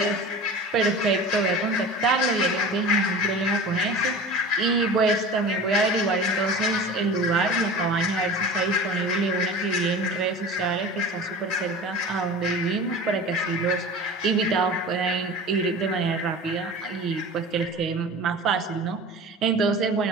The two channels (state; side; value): normal; both; correlation 0.36